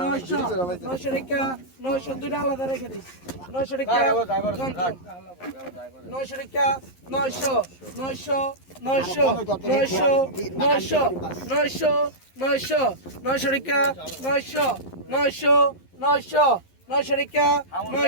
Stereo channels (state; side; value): late; right; 11 ms